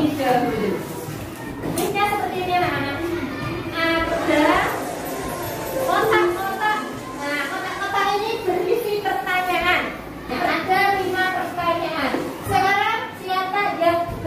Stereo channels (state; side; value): identical; both; correlation 1.00